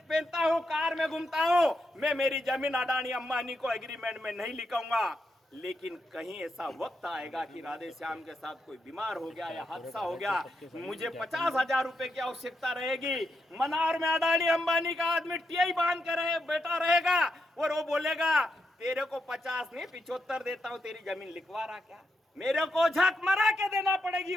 हूं, कार में घूमता हूं, मैं मेरी जमीन अडानी अंबानी को एग्रीमेंट में नहीं लिखूंगा। लेकिन कहीं ऐसा वक्त आएगा कि राधे श्याम के साथ कोई बीमार हो गया या हादसा हो गया, मुझे 50,000 रुपए की आवश्यकता रहेगी। मनार में अडानी अंबानी का आदमी टीआई बांध के बैठा रहेगा और वो बोलेगा तेरे को 50 नहीं 75 देता हूं, तेरी जमीन लिखवा रहा क्या? मेरे को झक मरा के देना पड़ेगी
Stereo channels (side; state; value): both; normal; correlation 0.83